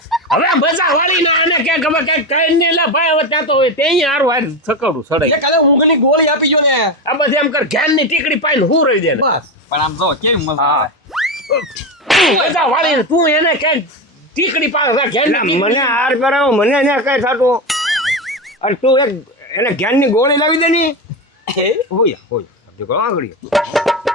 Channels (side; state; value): both; normal; correlation 0.17